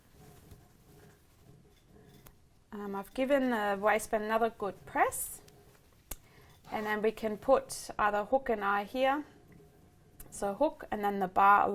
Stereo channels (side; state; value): both; identical; correlation 1.00